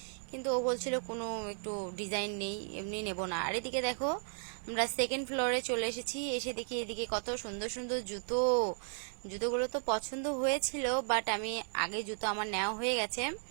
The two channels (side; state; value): left; silent; 54 dB below the other